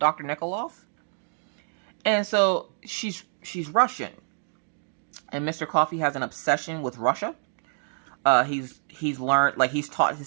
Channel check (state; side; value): silent; left; digital silence